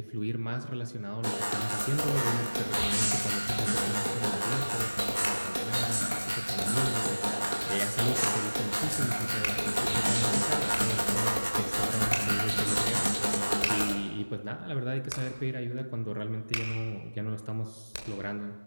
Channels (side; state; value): both; inverted; correlation -1.00